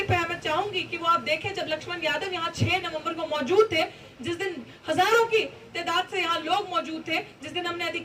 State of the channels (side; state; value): both; identical; correlation 1.00